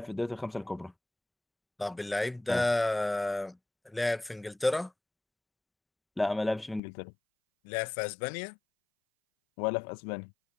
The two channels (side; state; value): right; drops out; at 6.8 s